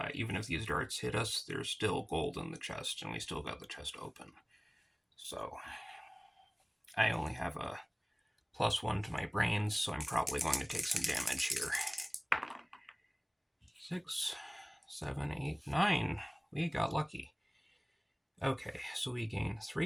even if these darts hit us, there's still gold in the chest, and we still got the chest open. So I only have a +1 to my brains, so I'm probably going to take some damage here. 6, 7, 8, 9. We got lucky. Okay, so we gain 3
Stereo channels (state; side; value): identical; both; correlation 1.00